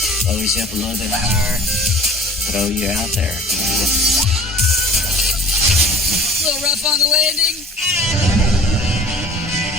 loads you up a little bit higher, throw you out there. A little rough on the landing.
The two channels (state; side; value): normal; both; correlation 0.47